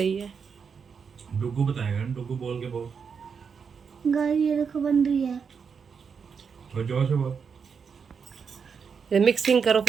है। डुगू बताएगा, डुगू बोल के बोल। गाइस ये देखो बन रही है। और जोर से बोल। ये मिक्सिंग करो,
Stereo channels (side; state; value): left; quieter; 6.2 dB